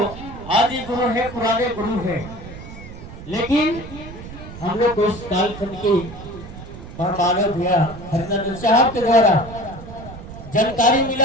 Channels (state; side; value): noise; right; rumble, 14 dB below the sound